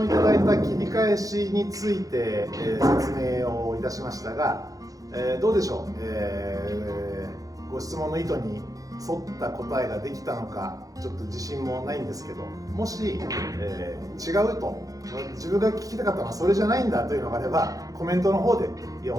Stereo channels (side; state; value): left; late; 0.17 ms